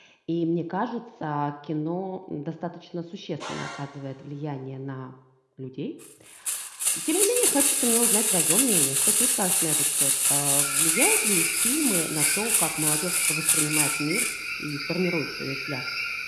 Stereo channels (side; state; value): both; identical; correlation 1.00